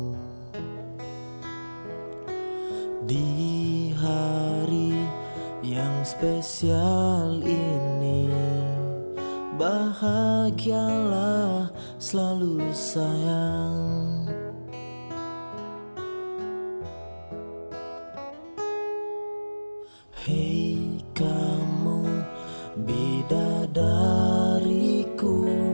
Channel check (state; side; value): inverted; both; correlation -1.00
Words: Di hari yang spesial ini, bahagialah selalu sayang. Hei kamu bidadariku,